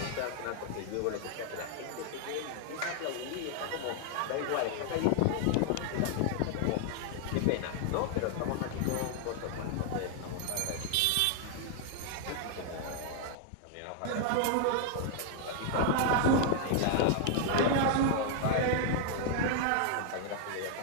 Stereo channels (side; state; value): both; different; correlation 0.00